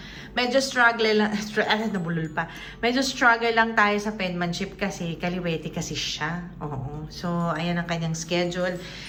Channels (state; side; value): identical; both; correlation 1.00